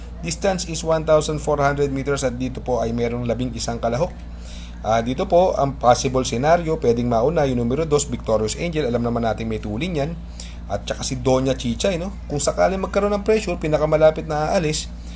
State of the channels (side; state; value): both; identical; correlation 1.00